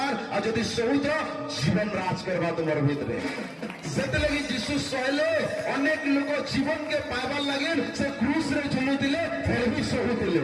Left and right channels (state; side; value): identical; both; correlation 1.00